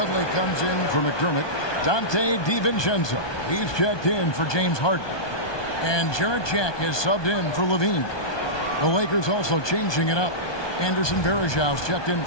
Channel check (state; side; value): late; right; 1.2 ms